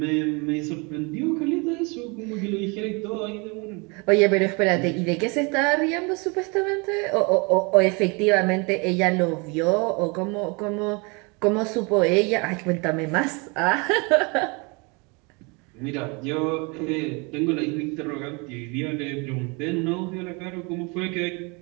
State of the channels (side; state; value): left; quieter; 30.2 dB